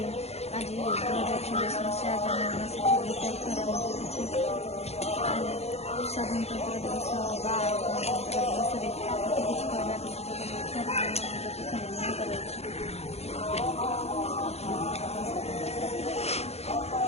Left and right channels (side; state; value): right; late; 0.31 ms